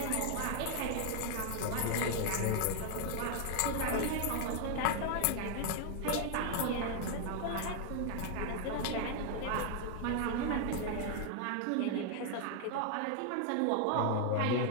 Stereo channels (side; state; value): both; different; correlation 0.00